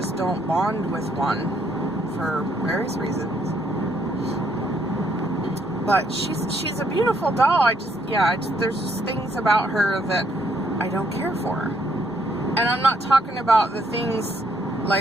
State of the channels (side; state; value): both; normal; correlation 0.71